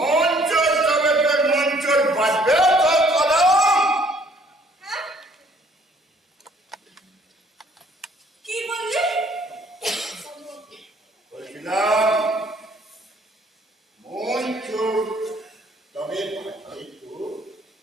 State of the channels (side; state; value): both; normal; correlation 0.60